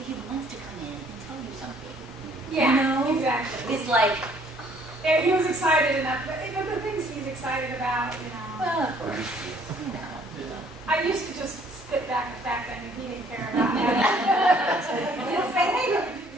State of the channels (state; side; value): normal; both; correlation 0.60